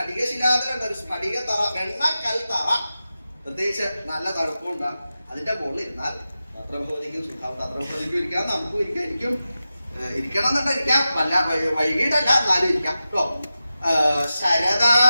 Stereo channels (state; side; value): inverted; both; correlation -0.93